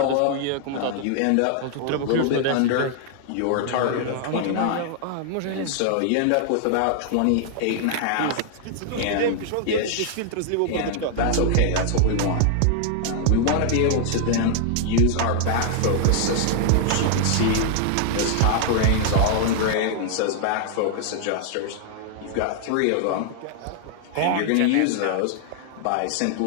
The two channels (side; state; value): both; different; correlation 0.00